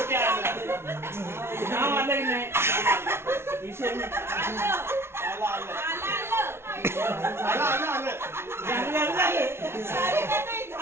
आलं. नाव आलंय नाही विषय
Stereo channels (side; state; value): left; late; 0.12 ms